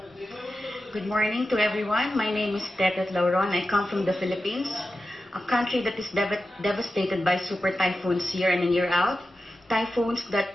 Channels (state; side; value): normal; both; correlation 0.92